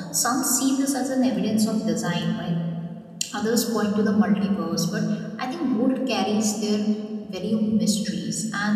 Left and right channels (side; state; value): both; identical; correlation 1.00